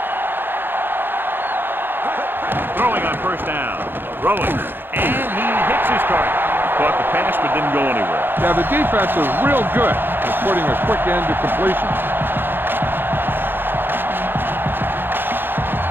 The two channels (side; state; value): left; late; 0.10 ms